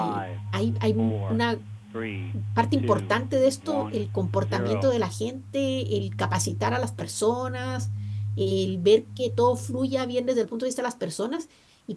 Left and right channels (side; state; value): both; identical; correlation 1.00